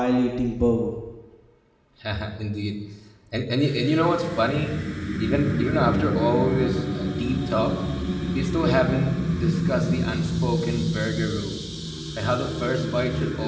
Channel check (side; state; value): both; identical; correlation 1.00